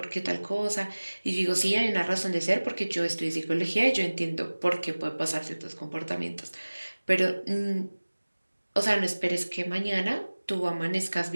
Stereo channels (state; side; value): inverted; both; correlation -1.00